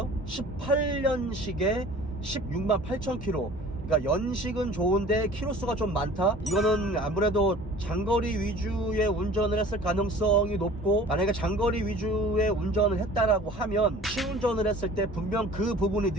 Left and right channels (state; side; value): normal; both; correlation 0.46